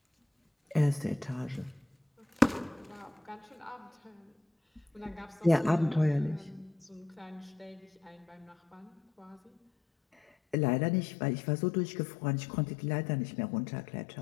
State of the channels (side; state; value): right; drops out; at 10.6 s